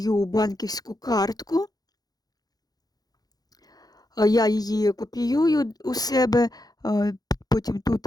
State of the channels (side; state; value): right; late; 0.19 ms